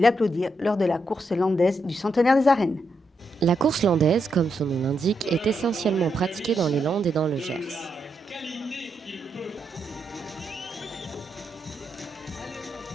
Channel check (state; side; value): normal; both; correlation 0.82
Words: lors de la course landaise du centenaire des arènes. La course landaise, comme son nom l'indique, est essentiellement pratiquée dans les Landes et dans le Gers.